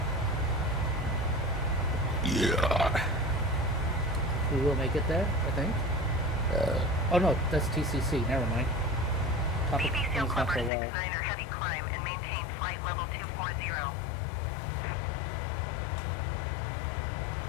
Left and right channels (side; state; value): right; drops out; at 10.7 s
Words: Yeah. We will make it there, I think. Oh no, that's TCC. Never mind. Top of BB Seal climb's not Clubber for a while. 69er Heavy climb and maintain flight level 240.